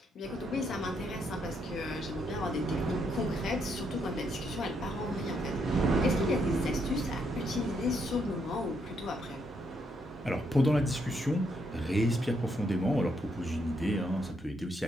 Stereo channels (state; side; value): normal; both; correlation 0.76